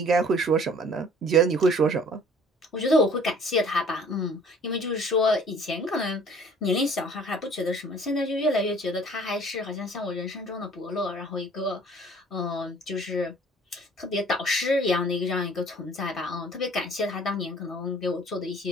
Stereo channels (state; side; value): normal; both; correlation 0.52